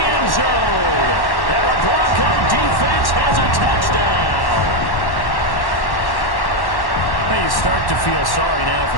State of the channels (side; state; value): right; late; 1.1 ms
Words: end zone. And the Bronco defense has a touchdown. Hey, you start to feel sorry now for